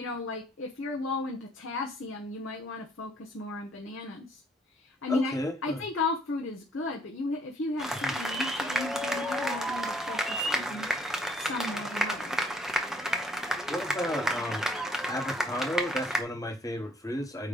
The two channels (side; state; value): both; normal; correlation 0.63